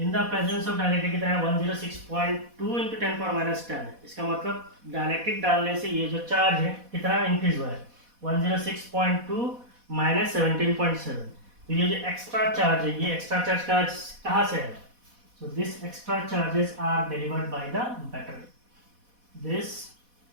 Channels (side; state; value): left; late; 4.1 ms